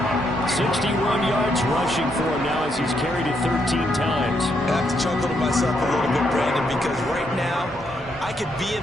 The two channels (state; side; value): normal; both; correlation 0.77